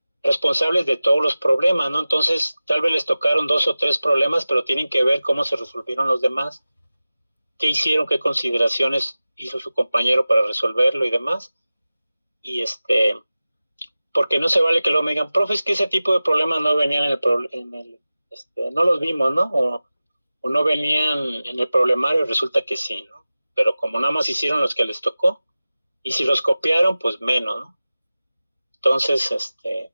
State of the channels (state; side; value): inverted; both; correlation -0.96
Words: responsables de todos los problemas, ¿no? Entonces, tal vez les tocaron 2 o 3 problemas, pero tienen que ver cómo se resolvieron los demás, qué hicieron, qué consideraciones hizo su compañero para resolverlo y demás. Y porque no se vale que luego me digan, profe, es que ese tipo de problemas no venían no los vimos, ¿no? O no venían en el problemario, resulta que sí, ¿no? Pero como nada más hicieron los que les tocó, y si los copiaron, pues menos, ¿no? Entonces,